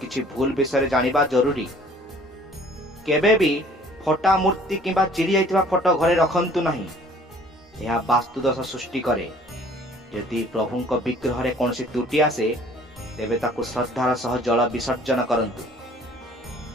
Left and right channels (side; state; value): both; normal; correlation 0.54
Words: କିଛି ଭୁଲ ବିଷୟରେ ଜାଣିବା ଜରୁରୀ। କେବେ ବି ଫଟା ମୂର୍ତ୍ତି କିମ୍ବା ଚିରି ଯାଇଥିବା ଫଟୋ ଘରେ ରଖନ୍ତୁ ନାହିଁ। ଏହା ବାସ୍ତୁଦୋଷ ସୃଷ୍ଟି କରେ। ଯଦି ପ୍ରଭୁଙ୍କ ବିଗ୍ରହରେ କୌଣସି ତ୍ରୁଟି ଆସେ ତେବେ ତାକୁ ଶ୍ରଦ୍ଧାର ସହ ଜଳ ବିସର୍ଜନ କରନ୍ତୁ।